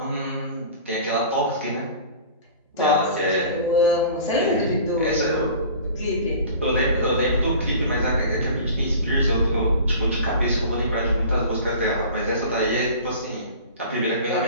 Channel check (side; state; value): both; inverted; correlation -0.41